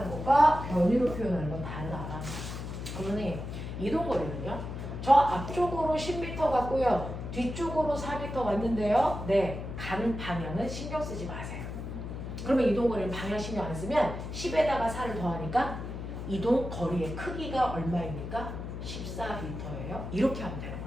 것과 변이로 표현하는 건 다르다. 그러니 이동거리는요, 저 앞쪽으로 10m 갔고요, 뒤쪽으로 4m 왔는데요, 네, 가는 방향은 신경 쓰지 마세요. 그러면 이동거리는 방향 신경 안 쓰면 10에다가 4를 더하니까 이동거리의 크기가 얼마입니까? 14m예요. 이렇게 하면 되는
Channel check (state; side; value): noise; left; hum, 7 dB below the sound